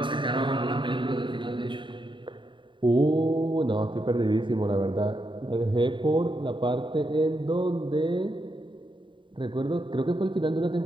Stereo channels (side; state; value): left; late; 0.23 ms